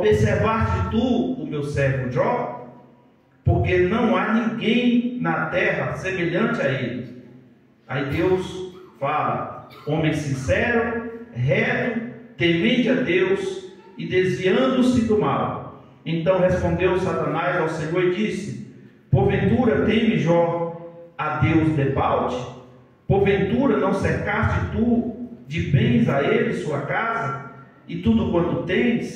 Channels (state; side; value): identical; both; correlation 1.00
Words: tu o meu servo Jó? Porque não há ninguém na terra semelhante a ele. Aí Deus fala: homem sincero, reto, temente a Deus e desviando-se do mal. Então respondeu Satanás ao Senhor e disse: porventura teme Jó a Deus debalde? Porventura não cercaste tu de bens a ele sua casa e tudo quanto